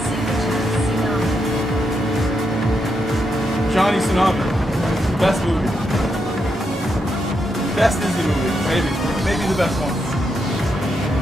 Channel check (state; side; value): normal; both; correlation 0.82